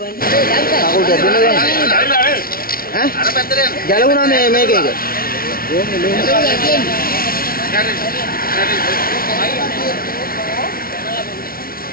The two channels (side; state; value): right; late; 0.43 ms